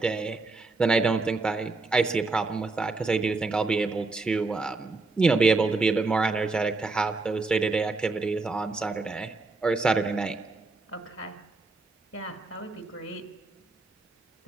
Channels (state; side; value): quieter; left; 3.7 dB